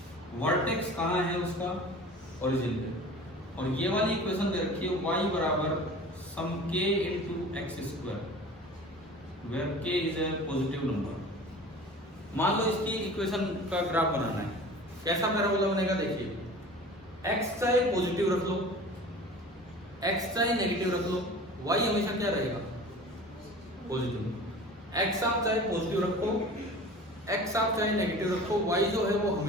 वर्टेक्स कहाँ है उसका, ओरिजिन पे, और ये वाली इक्वेशन दे रखी है y बराबर some k into x square, where k is a positive number. मान लो इसकी इक्वेशन का ग्राफ बनाना है, कैसा पैराबोला बनेगा देखिए, x चाहे पॉजिटिव रख लो, x चाहे नेगेटिव रख लो, y हमेशा क्या रहेगा, पॉजिटिव। x आप चाहे पॉजिटिव रखो, x आप चाहे नेगेटिव रखो, y जो है वो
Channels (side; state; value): both; normal; correlation 0.40